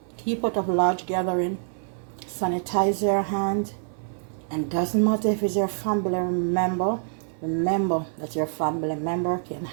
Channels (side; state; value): left; silent; 61 dB below the other